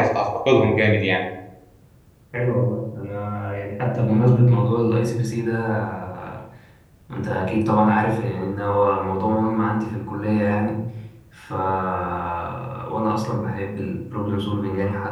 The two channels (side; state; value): both; identical; correlation 1.00